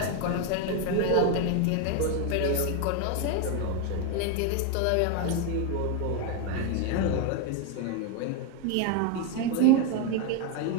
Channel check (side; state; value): both; different; correlation 0.01